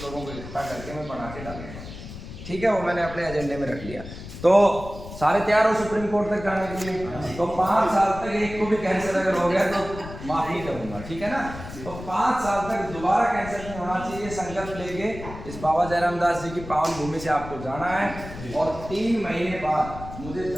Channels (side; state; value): left; noise; rumble, 12 dB below the sound